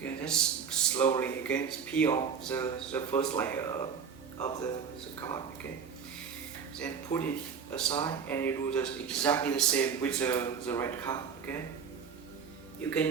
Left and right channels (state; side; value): quieter; left; 6.6 dB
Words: just slowly, okay, peel off the first layer of the card, okay. Then put it aside and you do just exactly the same with the red card, okay. You